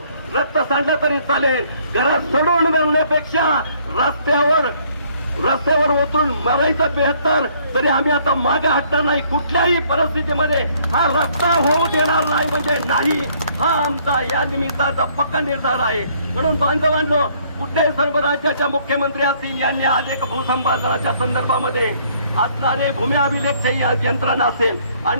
रक्त सांडलं तरी चालेल, घरात सोडून मिळण्यापेक्षा रस्त्यावर उतरून मरायचं बेहतर. तरी आम्ही आता मागे हटणार नाही. कुठल्याही परिस्थितीमध्ये हा रस्ता होऊ देणार नाही म्हणजे नाही, हा आमचा या निमित्ताचा पक्का निर्धार आहे. म्हणून बांधवांनो, कुठल्याही सर्व राज्याच्या मुख्यमंत्री असतील यांनी आज एक भूसंपादनाच्या संदर्भामध्ये असणारे भूमी अभिलेखची यंत्रणा असेल,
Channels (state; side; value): inverted; both; correlation -0.64